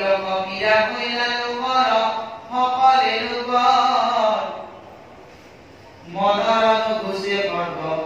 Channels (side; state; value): both; identical; correlation 1.00